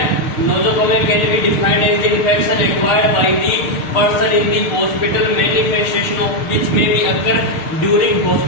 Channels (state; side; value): late; right; 6.6 ms